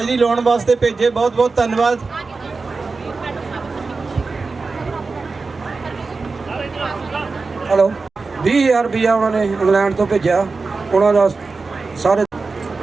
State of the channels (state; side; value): quieter; left; 4.1 dB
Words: ਲਾਉਣ ਵਾਸਤੇ ਭੇਜੇ ਬਹੁਤ ਬਹੁਤ ਧੰਨਵਾਦ ਹੈਲੋ 20000 ਰੁਪਇਆ ਉਹਨਾਂ ਨੇ ਇੰਗਲੈਂਡ ਤੋਂ ਭੇਜਿਆ ਉਹਨਾਂ ਦਾ ਸਾਰੇ